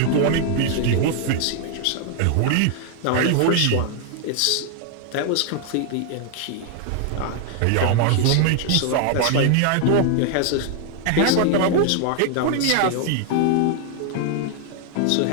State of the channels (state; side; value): different; both; correlation 0.00